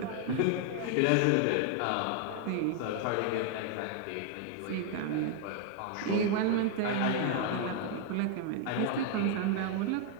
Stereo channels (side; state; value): both; different; correlation 0.00